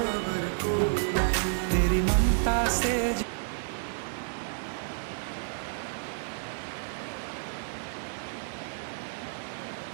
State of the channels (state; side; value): silent; left; digital silence